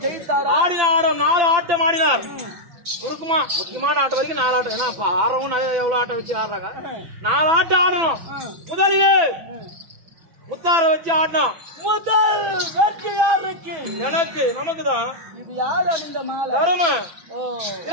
ஆடினார். 4 ஆட்டம் ஆடினார். சுருக்குமா முக்கியமான ஆட்டம் வரைக்கும் 4 ஆட்டம். ஏன்னா ஆறவும் நிறைய எவ்வளவு ஆட்டம் வச்சு ஆடுறாங்க. 4 ஆட்டம் ஆடணும். முதலிலே முத்தார வச்சு ஆடணும். முதல் வெற்றி யாருக்கு? எனக்கு, நமக்கு தான். இது யார் அணிந்த மாலை? தரும.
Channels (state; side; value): late; left; 6.0 ms